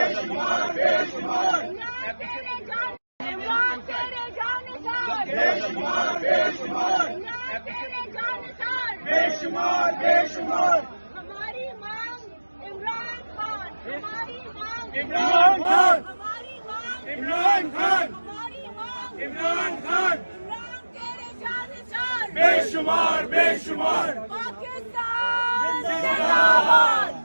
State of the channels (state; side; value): inverted; both; correlation -1.00